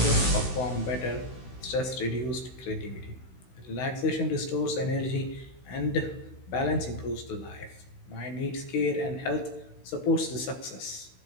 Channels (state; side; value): late; right; 16 ms